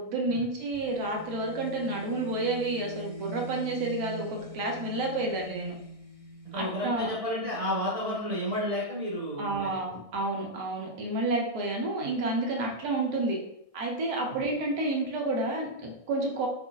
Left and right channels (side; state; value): left; late; 1.6 ms